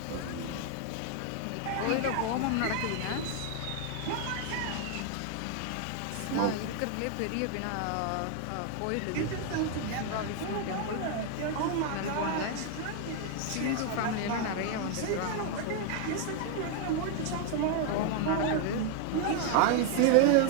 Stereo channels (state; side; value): different; both; correlation 0.00